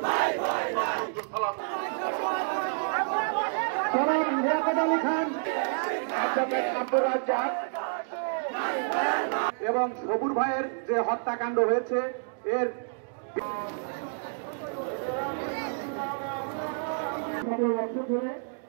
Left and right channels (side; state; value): left; silent; digital silence